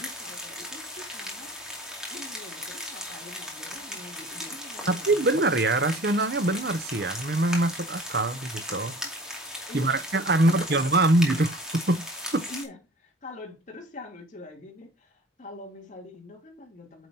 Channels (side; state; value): both; normal; correlation 0.45